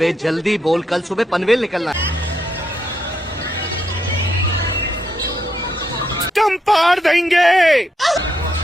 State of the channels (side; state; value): both; normal; correlation 0.79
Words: जल्दी बोल, कल सुबह पनवेल निकलना है। हम पार देंगे।